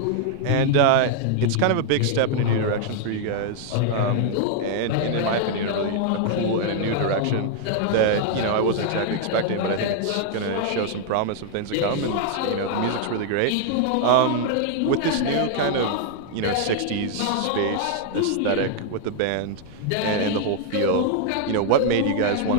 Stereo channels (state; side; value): different; both; correlation 0.00